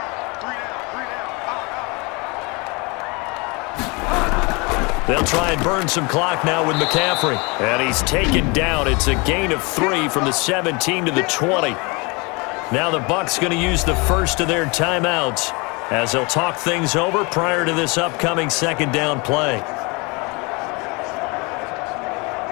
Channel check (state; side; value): quieter; right; 28.2 dB